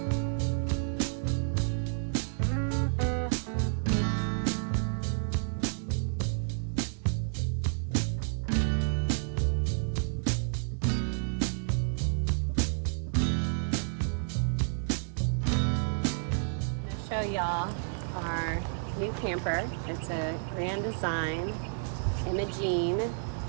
Show y'all our new camper. It's a Grand Design Imogene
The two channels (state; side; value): silent; left; digital silence